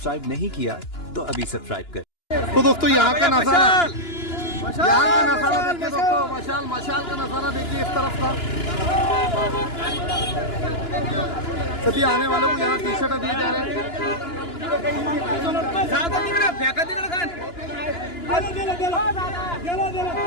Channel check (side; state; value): right; late; 2.9 ms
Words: नहीं किया तो अभी सब्सक्राइब करें। तो दोस्तों यहाँ का नज़ारा, देखिए दोस्तों, मशाल का नज़ारा देखिए इस तरफ का। सभी आने वालों को यहाँ टी शर्ट दिए जा रहे हैं।